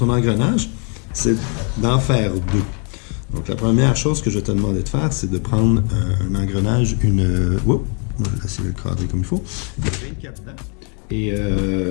engrenage, c'est d'en faire deux. Donc la première chose que je vais te demander de faire, c'est de prendre un engrenage, Oups, je vais essayer de le cadrer comme il faut. 24 dents. Et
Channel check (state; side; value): quieter; right; 38.5 dB